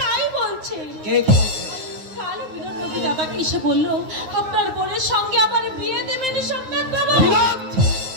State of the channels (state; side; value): late; left; 9.6 ms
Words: বলছে। কাল বিনোদ নদী দাদাকে এসে বললো আপনার বোনের সঙ্গে আবার বিয়ে দেবেন সোমনাথ বাবা।